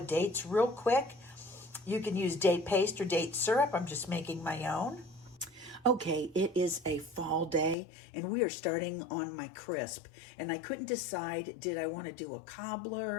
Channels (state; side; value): drops out; right; at 7.8 s